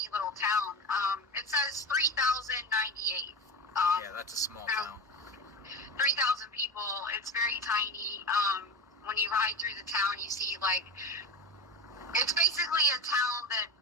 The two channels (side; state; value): both; normal; correlation 0.25